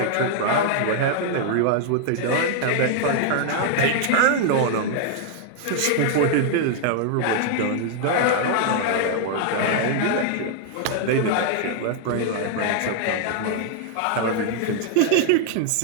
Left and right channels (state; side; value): different; both; correlation 0.00